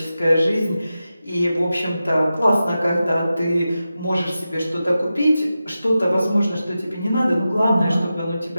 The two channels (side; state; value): both; inverted; correlation -0.92